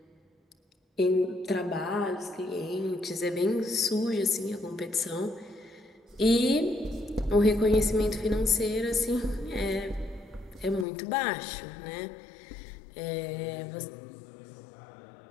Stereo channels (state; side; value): drops out; right; at 10.9 s